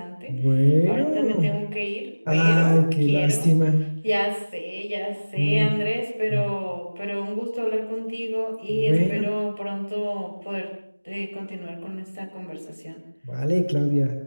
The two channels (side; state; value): both; inverted; correlation -1.00